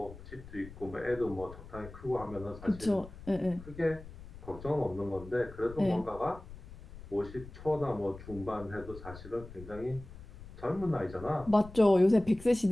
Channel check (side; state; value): left; noise; rumble, 15 dB below the sound